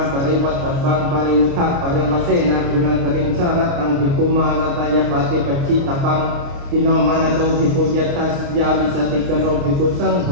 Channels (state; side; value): late; left; 29 ms